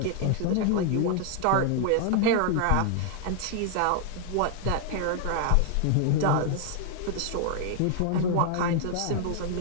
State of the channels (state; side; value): different; both; correlation 0.00